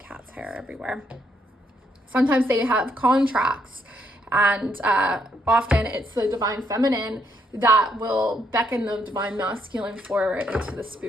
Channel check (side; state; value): both; normal; correlation 0.74